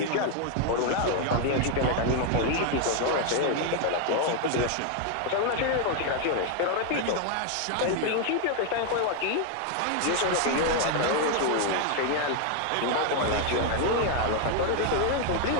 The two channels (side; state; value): both; different; correlation 0.01